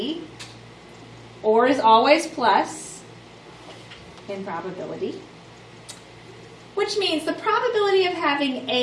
or is always plus in probability, which means the probability of having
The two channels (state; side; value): identical; both; correlation 1.00